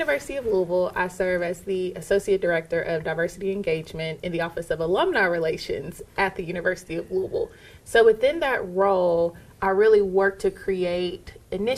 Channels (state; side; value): identical; both; correlation 1.00